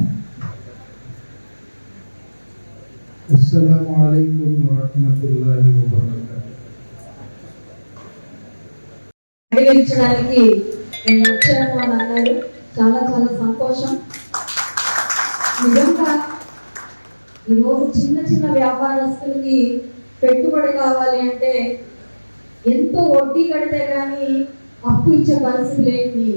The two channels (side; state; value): both; inverted; correlation -1.00